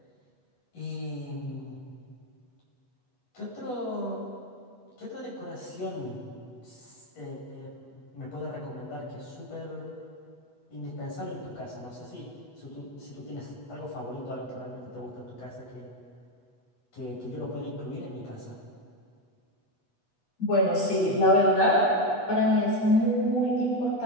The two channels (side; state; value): right; late; 8.2 ms